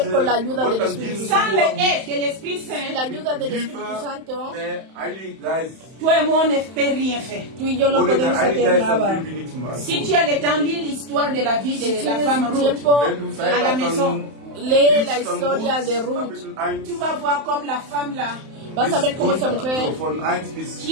con la ayuda Gott del dann Espíritu dienen. Sans Santo. l'aide de l'Esprit Sin la Saint, ayuda del Hilfe Espíritu Santo, der Heilige Geist. toi et moi, on ne peut rien faire. tú y yo no Ohne der podemos Heilige hacer Geist dann nada. können wir nichts machen. Si tu as le temps, lis l'histoire de la vie Si de la tienes femme Ruth. tiempo, Wenn du à la Zeit maison. hast, lee dann la liest dann historia de Ruth. Kapitel 1, Tu vas voir comme la femme là, Vas a ver cómo esa runter, mujer, so von 1 bis Qui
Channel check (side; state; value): left; late; 31 ms